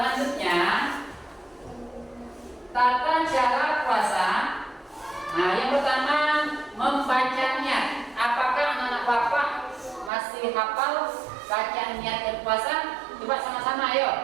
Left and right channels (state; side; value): drops out; left; at 10.1 s